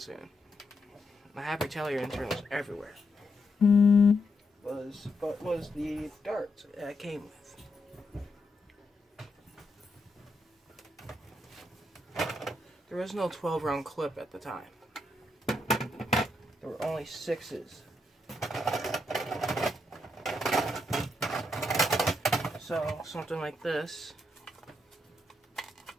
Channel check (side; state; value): both; normal; correlation 0.81